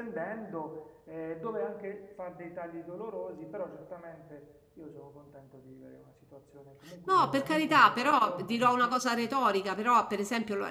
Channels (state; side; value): identical; both; correlation 1.00